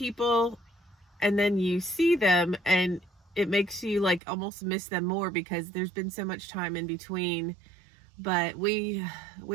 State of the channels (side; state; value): left; drops out; at 4.2 s